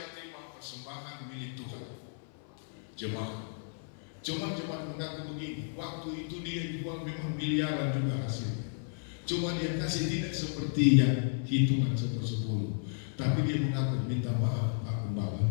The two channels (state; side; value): silent; right; 56 dB below the other